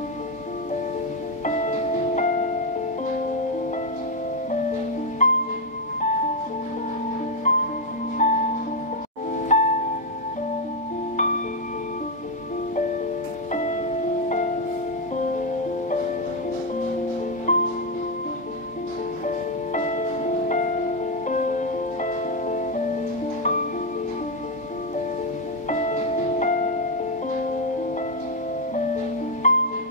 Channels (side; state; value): both; normal; correlation 0.02